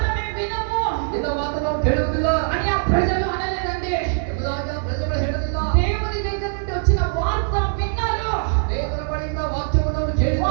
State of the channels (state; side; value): silent; left; digital silence